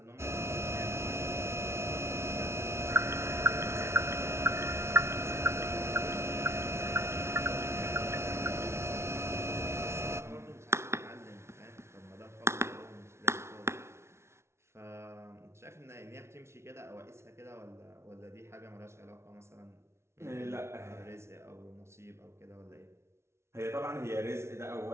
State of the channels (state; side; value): late; left; 0.13 ms